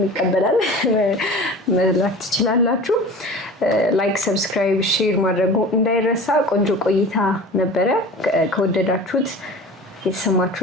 ይቀበላል፣ መላክ ትችላላችሁ። ላይክ፣ ሰብስክራይብ፣ ሼር ማድረጉ እንዳይረሳ። ቆንጆ ቆይታ ነበረ። ከወደዳችሁት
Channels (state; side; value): normal; both; correlation 0.38